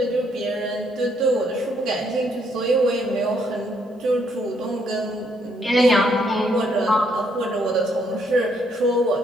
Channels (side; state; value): both; normal; correlation 0.71